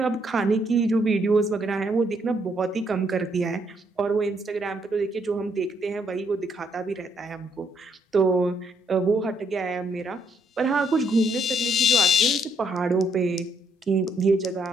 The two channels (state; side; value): normal; both; correlation 0.72